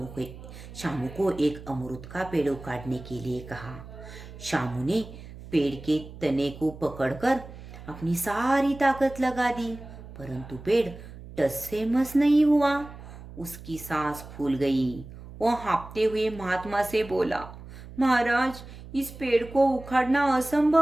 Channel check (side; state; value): right; noise; hum, 15 dB below the sound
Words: को एक अमरूद का पेड़ उखाड़ने के लिए कहा। शामू ने पेड़ के तने को पकड़कर अपनी सारी ताकत लगा दी, परंतु पेड़ टस से मस नहीं हुआ। उसकी सांस फूल गई। वह हाँफते हुए महात्मा से बोला, महाराज, इस पेड़ को उखाड़ना